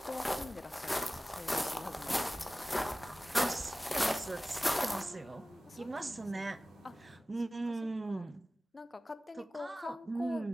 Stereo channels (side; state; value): both; normal; correlation 0.97